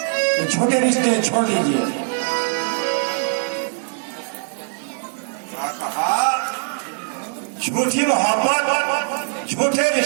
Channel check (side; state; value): left; silent; 65 dB below the other